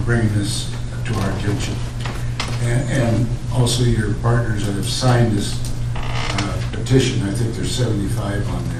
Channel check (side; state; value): both; identical; correlation 1.00